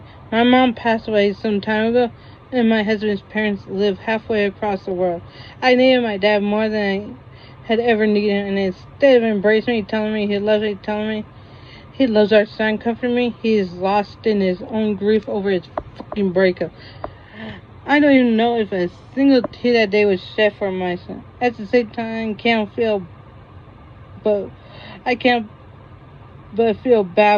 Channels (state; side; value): identical; both; correlation 1.00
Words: My mom passed away some time ago, and my husband's parents live halfway across the world. I needed my dad more than I had ever needed him, and instead of embracing me, telling me he loves me, telling me he loves our son, comforting me, he is lost in his own grief over his fucking breakup. I don't even know if a single tear that day was shed for my son. At the same time, I can't but feel